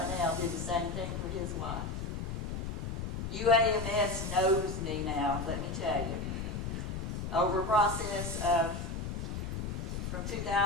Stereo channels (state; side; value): noise; left; rumble, 4 dB below the sound